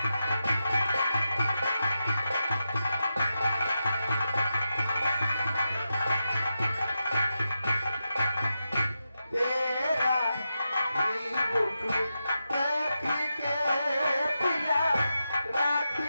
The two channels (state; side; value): inverted; both; correlation -0.88